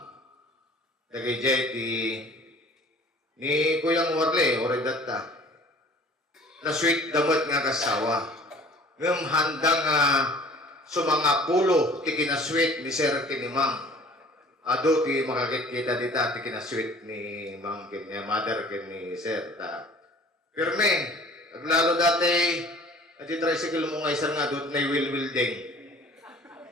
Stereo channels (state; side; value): normal; both; correlation 0.49